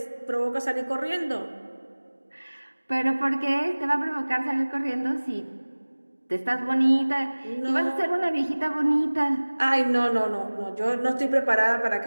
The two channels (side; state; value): both; inverted; correlation -1.00